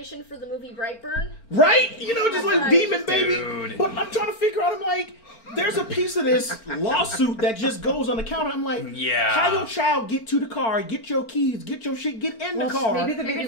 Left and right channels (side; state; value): right; late; 4.4 ms